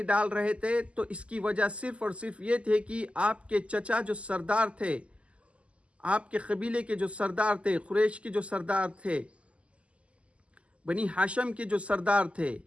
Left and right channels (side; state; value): left; late; 0.058 ms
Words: ڈال رہے تھے تو اس کی وجہ صرف اور صرف یہ تھے کہ آپ کے چچا جو سردار تھے، آپ کے قبیلے کے جو سردار تھے، قریش کے جو سردار تھے، بنی ہاشم کے جو سردار تھے،